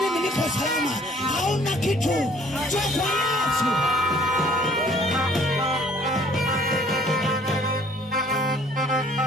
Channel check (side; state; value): both; normal; correlation 0.57